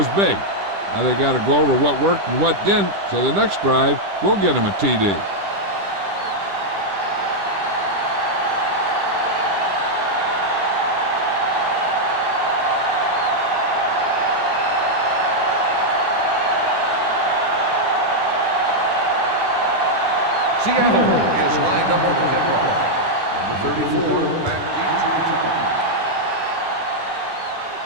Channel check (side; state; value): left; late; 10 ms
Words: big. Now they got to go over what worked and what didn't, so the next drive will get them a TD. Seattle is lined up for the kickoff. Number 34, back deep to return.